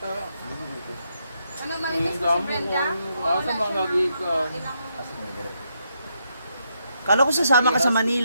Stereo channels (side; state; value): both; inverted; correlation -0.79